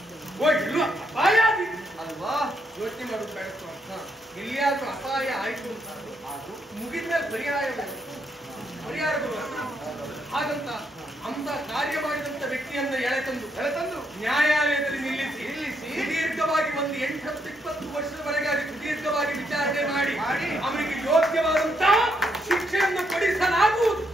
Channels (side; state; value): both; normal; correlation 0.77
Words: ಅಪಾಯ ಅಲ್ವಾ? ಯೋಚನೆ ಮಾಡೋದು ಬೇಡ. ಎಲ್ಲಿಯಾದ್ರೂ ಅಪಾಯ ಆಯ್ತು ಅಂತ ಅದು ಮುಗಿದ ಮೇಲೆ ಪರಿಹಾರಗಳು ಹಾಗಂತ ಅಂತ ಕಾರ್ಯ ಮಾಡಿದಂತ ವ್ಯಕ್ತಿಯನ್ನ ಎಳೆತಂದು ನ್ಯಾಯಾಲಯದಲ್ಲಿ ನಿಲ್ಲಿಸಿ ದೀರ್ಘವಾಗಿ ಒಂದು 8-20 ವರ್ಷದವರೆಗೆ ಅದಕ್ಕೆ ದೀರ್ಘವಾಗಿ ವಿಚಾರಣೆ ಮಾಡಿ ಅವರಿಗೆ ಯೋಗ್ಯವಾದಂತಹ ಶಿಕ್ಷೆಯನ್ನು ಕೊಡಿಸಲಾಗುವುದು.